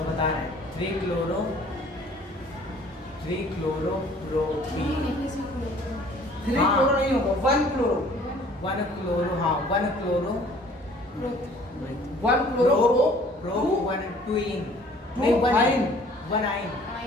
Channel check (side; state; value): both; normal; correlation 0.54